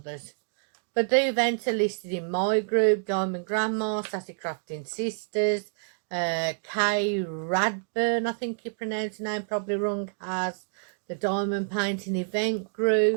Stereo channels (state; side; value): silent; left; digital silence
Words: But the events are listed in my group, Diamond Grandma, Sassy Crafting Sisters, Kay Radburn, I think you pronounce the name probably wrong, has the Diamond Painting Event